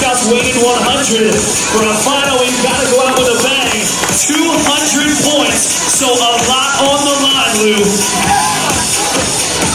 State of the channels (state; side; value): identical; both; correlation 1.00